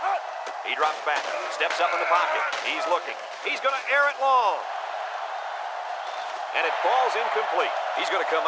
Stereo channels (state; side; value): identical; both; correlation 1.00